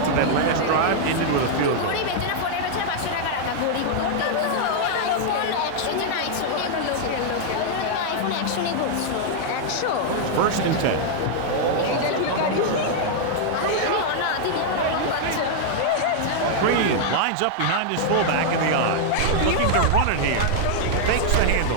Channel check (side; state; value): both; different; correlation -0.01